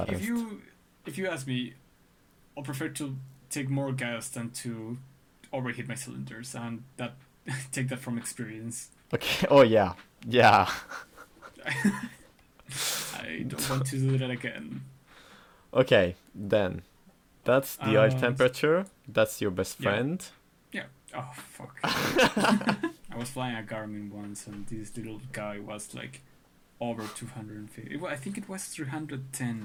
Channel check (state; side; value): identical; both; correlation 1.00